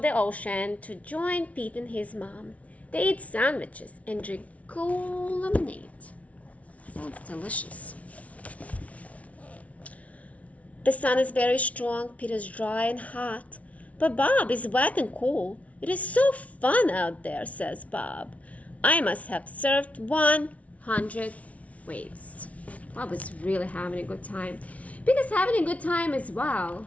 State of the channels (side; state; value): right; late; 0.066 ms